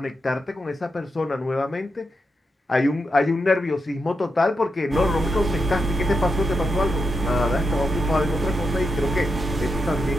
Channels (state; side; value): normal; both; correlation 0.85